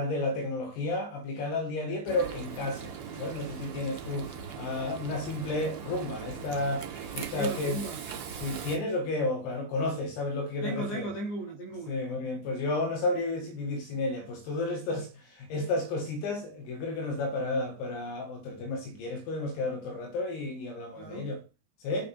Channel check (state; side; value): late; right; 19 ms